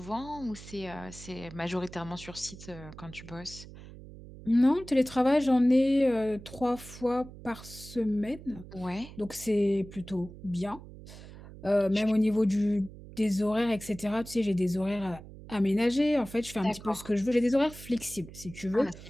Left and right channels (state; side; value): noise; right; hum, 16 dB below the sound